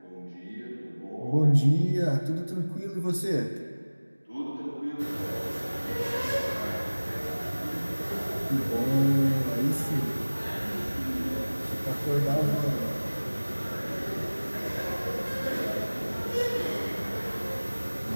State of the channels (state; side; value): inverted; both; correlation -1.00